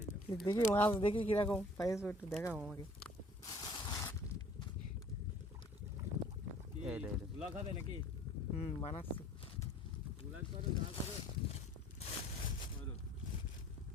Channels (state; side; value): normal; both; correlation 0.54